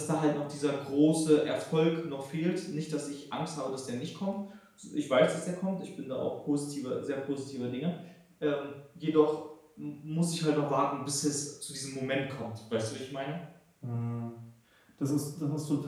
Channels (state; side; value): identical; both; correlation 1.00